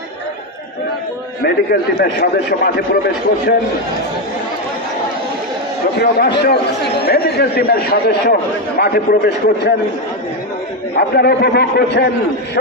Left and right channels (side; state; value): both; normal; correlation 0.07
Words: মেডিকেল টিমের সদস্য মাঠে প্রবেশ করছেন। সুপ্রিয় দর্শক, মেডিকেল টিমের সদস্য মাঠে প্রবেশ করছেন। আপনারা উপভোগ করছেন